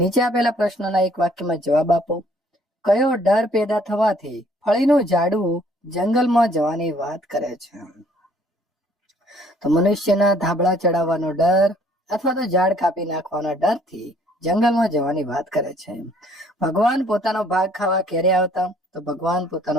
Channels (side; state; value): both; normal; correlation 0.61